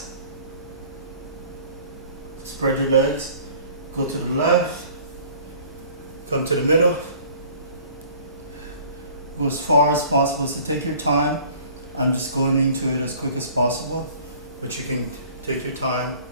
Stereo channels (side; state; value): both; inverted; correlation -0.50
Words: Spread your legs, go to the left, come to the middle, go as far as possible. So take your time. I'm just going into it as quick as possible, but you can take your time.